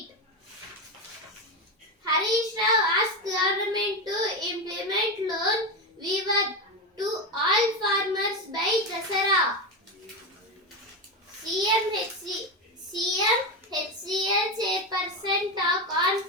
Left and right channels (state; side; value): normal; both; correlation 0.14